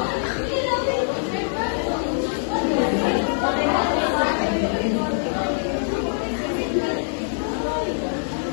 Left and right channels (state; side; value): silent; right; digital silence